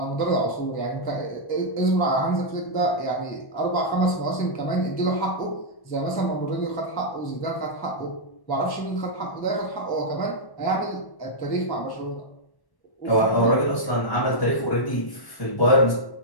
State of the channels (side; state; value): right; late; 1.1 ms